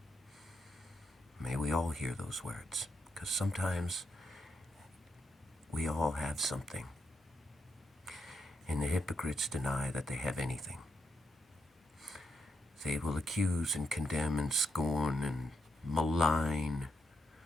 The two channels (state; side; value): normal; both; correlation 0.81